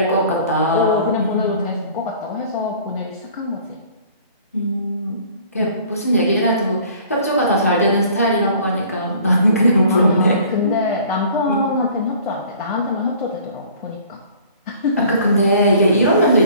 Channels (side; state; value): both; inverted; correlation -0.51